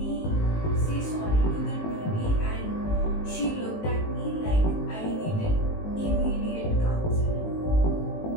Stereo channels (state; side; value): late; right; 19 ms